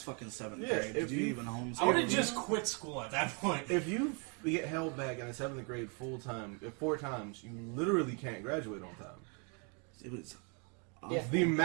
fucking 7th Yeah, grade." if Did you you- even homeschool? I would have just quit school at that point. if you get held back in the 7th grade full time, 4 times, you literally can't graduate on time. It was. Yeah. The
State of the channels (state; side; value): quieter; left; 36.3 dB